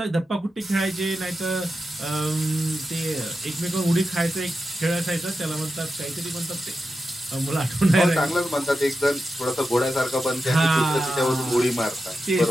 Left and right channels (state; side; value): normal; both; correlation 0.90